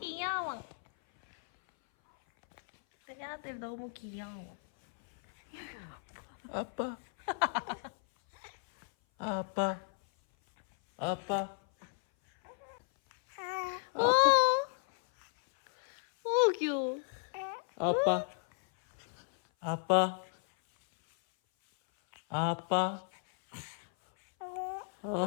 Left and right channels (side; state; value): right; silent; 55 dB below the other